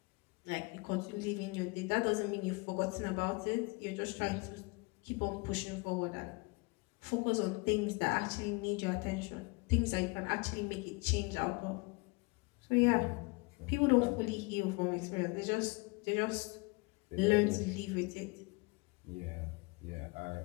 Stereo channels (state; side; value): quieter; right; 28.0 dB